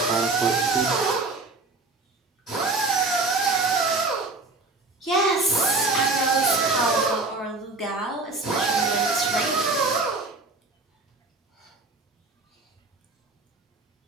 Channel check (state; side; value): quieter; left; 3.5 dB